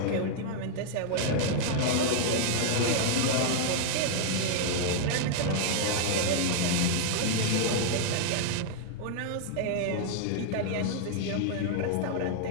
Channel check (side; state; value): both; different; correlation -0.01